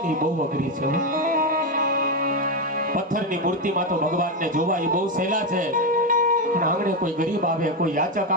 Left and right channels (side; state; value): both; normal; correlation 0.09